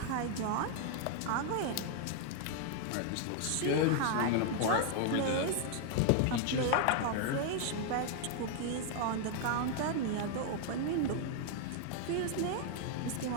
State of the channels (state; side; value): different; both; correlation 0.00